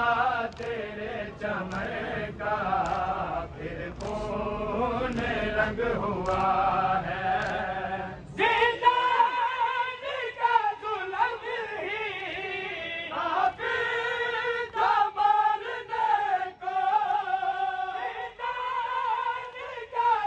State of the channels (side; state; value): both; identical; correlation 1.00